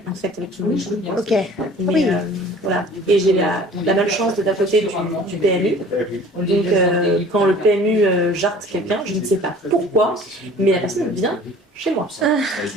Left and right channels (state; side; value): normal; both; correlation 0.48